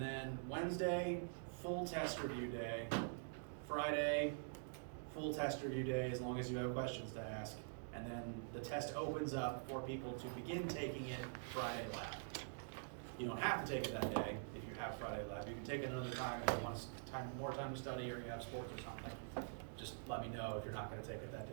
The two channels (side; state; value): left; silent; digital silence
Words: then Wednesday, full test review day. Friday, full test review day as long as you have questions to ask. And then the test opens up for people to begin taking it Friday lab. You don't have to take it that day if you have Friday lab. You can take it another time if you want more time to study or you have sports or something. Just let me know if you're not going to take it that day